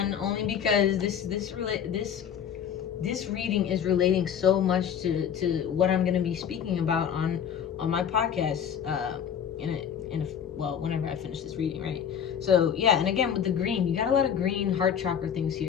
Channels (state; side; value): quieter; right; 8.4 dB